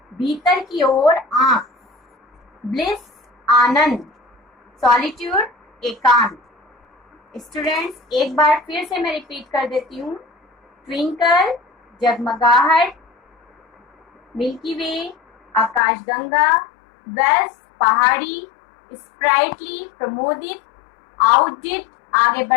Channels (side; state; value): right; drops out; at 15.8 s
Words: भीतर की ओर आंख। ब्लिस आनंद। सॉलिट्यूड एकांत। स्टूडेंट्स एक बार फिर से मैं रिपीट कर देती हूँ। ट्विंकल जगमगाहट, मिल्की वे आकाशगंगा, वेल्स पहाड़ी, स्प्राइटली प्रमोदित, आउटडिट आगे